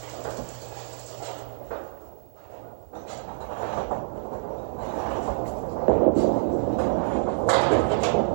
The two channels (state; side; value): silent; left; 60 dB below the other